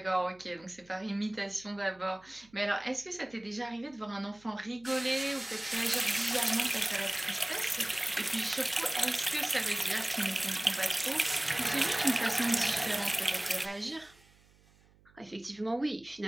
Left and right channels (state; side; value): noise; right; hum, 29 dB below the sound